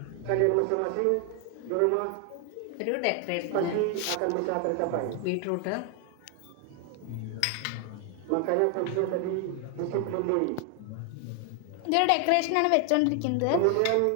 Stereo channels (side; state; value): both; different; correlation 0.00